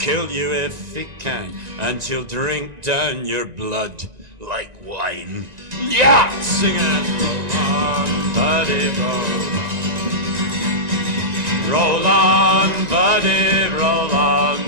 you if he can, and he'll drink down your blood like wine. Yeah! Sing it, roll on, buddy, roll on. Roll on, buddy, roll on.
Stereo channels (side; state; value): left; late; 1.9 ms